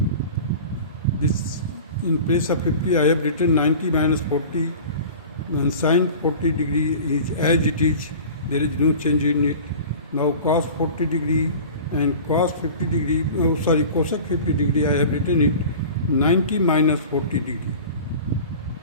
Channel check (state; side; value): inverted; both; correlation -0.38